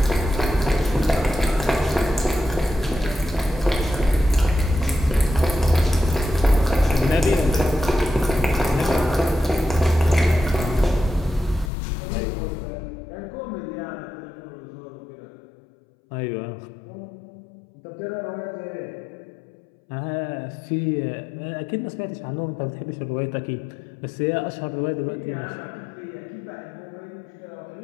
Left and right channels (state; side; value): drops out; right; at 11.7 s